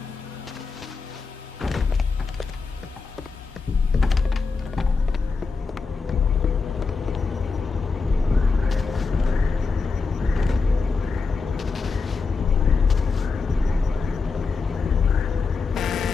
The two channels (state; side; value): quieter; right; 4.6 dB